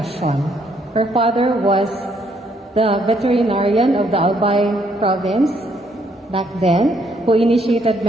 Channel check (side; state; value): both; normal; correlation 0.70